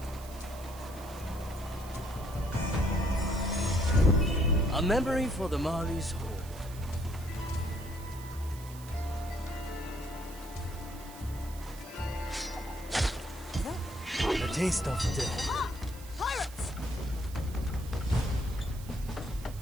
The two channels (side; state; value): right; noise; hiss, 18 dB below the sound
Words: A memory for the Mari's hold. The taste of death. Pirates!